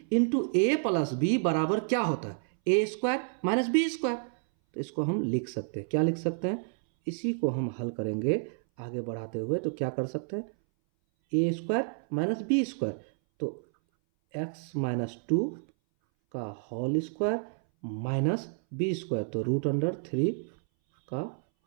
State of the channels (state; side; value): silent; left; 58 dB below the other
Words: into A plus B बराबर क्या होता है, A square minus B square. तो इसको हम लिख सकते हैं, क्या लिख सकते हैं, इसी को हम हल करेंगे आगे बढ़ाते हुए, तो क्या कर सकते हैं, A square minus B square, तो एक्स माइनस टू का whole square minus B square, तो रूट अंडर थ्री का